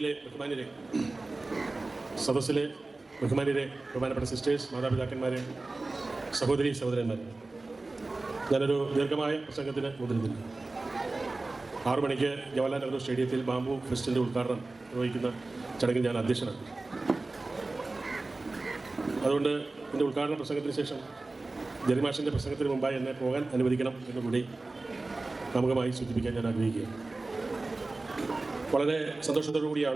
ബഹുമാന്യരെ, സദസ്സിലെ ബഹുമാന്യരെ, ബഹുമാനപ്പെട്ട സിസ്റ്റേഴ്സ്, മാതാപിതാക്കന്മാരെ, സഹോദരി സഹോദരന്മാരെ, ഞാനൊരു ദീർഘമായ പ്രസംഗത്തിന് മുതിരുന്നില്ല. 6 മണിക്ക് ജവഹർലാൽ നെഹ്റു സ്റ്റേഡിയത്തിൽ ബാംബു ഫെസ്റ്റിൻ്റെ ഉദ്ഘാടനം നിർവഹിക്കുന്ന ചടങ്ങിൽ ഞാൻ അധ്യക്ഷനാണ്. അതുകൊണ്ട് എൻ്റെ ഉദ്ഘാടന പ്രസംഗത്തിന് ശേഷം ജെറിമാഷിൻ്റെ പ്രസംഗത്തിന് മുമ്പായി എന്നെ പോകാൻ അനുവദിക്കണം എന്നുകൂടി ആമുഖമായി സൂചിപ്പിക്കാൻ ഞാൻ ആഗ്രഹിക്കുകയാണ്. വളരെ സന്തോഷത്തോടു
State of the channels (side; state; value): left; quieter; 3.2 dB